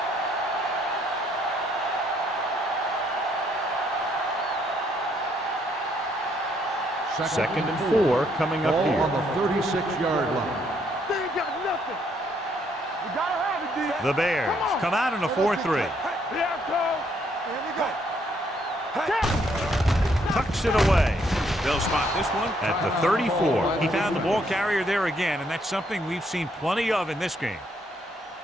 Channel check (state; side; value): normal; both; correlation 0.70